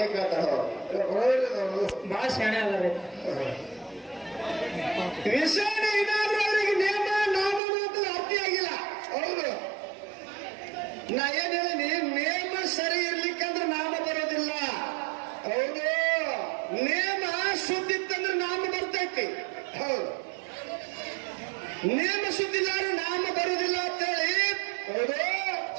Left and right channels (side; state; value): left; drops out; at 7.6 s